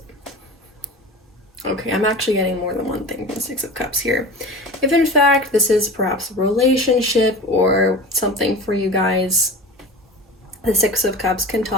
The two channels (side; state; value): both; normal; correlation 0.33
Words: actually getting more than one thing from the 6 of Cups here. If in fact this is perhaps a relationship or something for you guys, The Six of Cups can